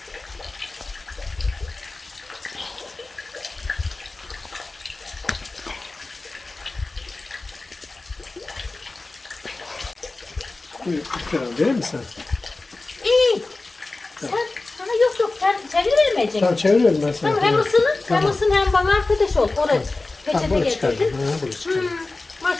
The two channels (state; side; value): quieter; right; 3.3 dB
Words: Buyur, lütfen verir misin? İyi. Sen sana yok sen çeviremeyeceksin. Tamam çeviriyorum ben sana. Tamam hem ısının hem ısın hem bana arkadaş ol. Oraya Tamam peçete bunu çıkardım. getirdin. Ha, bunu çıkardım.